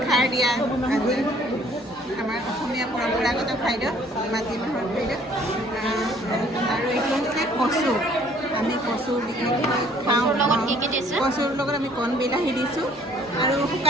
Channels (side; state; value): both; normal; correlation 0.58